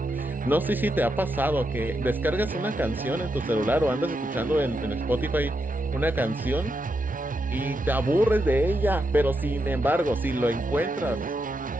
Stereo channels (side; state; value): both; normal; correlation 0.83